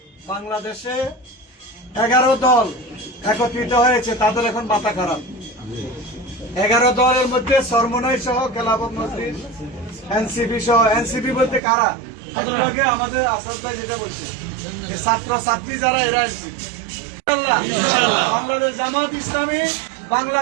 বাংলাদেশে 11 দল একত্রিত হয়েছে, তাদের এখন মাথা খারাপ। 11 দলের মধ্যে সরমনাই সহ খেলাফত মজলিস, এনসিপি সহ। এনসিপি বলতে কারা? আগে আমাদের আসাদ ভাই যেটা বলছে, এই ছাত্র ছাত্রী যারা, এরা এনসিপি। বাংলাদেশ জামাত ইসলামী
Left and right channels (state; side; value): drops out; left; at 11.6 s